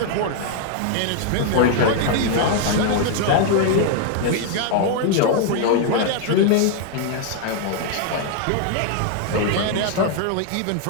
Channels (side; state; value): both; different; correlation 0.00